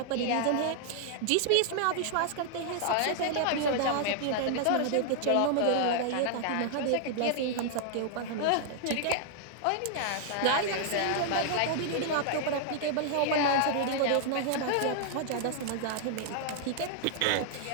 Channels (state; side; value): different; both; correlation -0.01